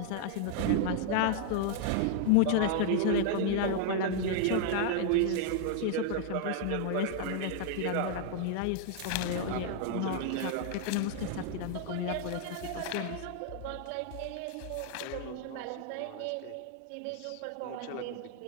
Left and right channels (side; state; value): both; different; correlation 0.00